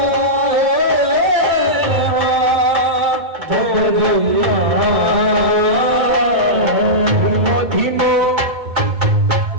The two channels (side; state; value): left; late; 2.2 ms